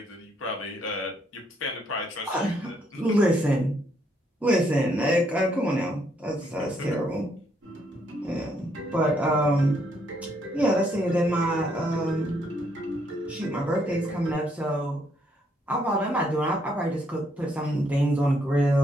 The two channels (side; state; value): both; normal; correlation 0.72